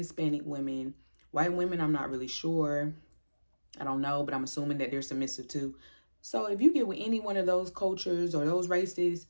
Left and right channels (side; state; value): both; inverted; correlation -1.00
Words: women. White women, I'm not really sure. I don't know, but I'm assuming that they're submissive too. So if you get with any one of those cultures or those races,